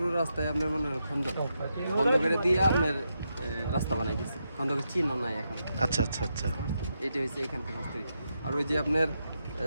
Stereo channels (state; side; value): inverted; both; correlation -0.84